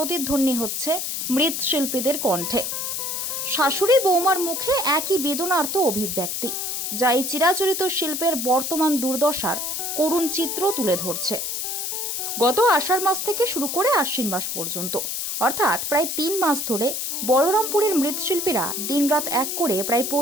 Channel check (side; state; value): left; noise; hiss, 3 dB below the sound